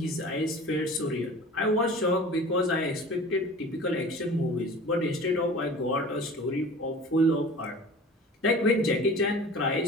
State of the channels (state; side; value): normal; both; correlation 0.40